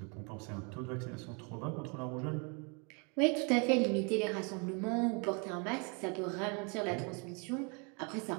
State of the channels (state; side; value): quieter; left; 33.9 dB